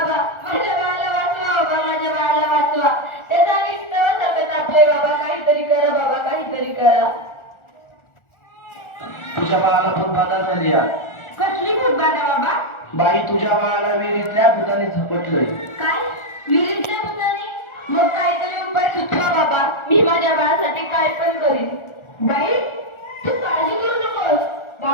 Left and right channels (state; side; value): late; right; 1.4 ms